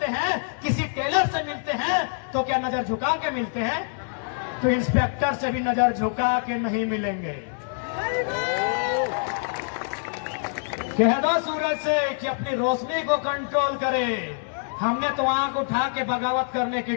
हैं, किसी टेलर से मिलते हैं, तो क्या नजर झुका के मिलते हैं? तो इंस्पेक्टर से भी नजर झुका के नहीं मिलेंगे। कह दो सूरज से कि अपनी रोशनी को कंट्रोल करे। हमने तो आंख उठा के बगावत करने की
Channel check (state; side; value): silent; right; digital silence